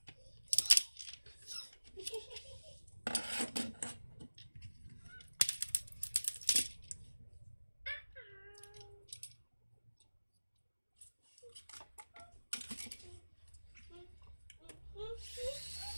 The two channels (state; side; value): inverted; both; correlation -1.00